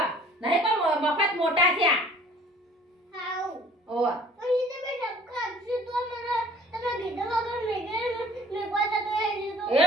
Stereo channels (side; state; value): both; normal; correlation 0.52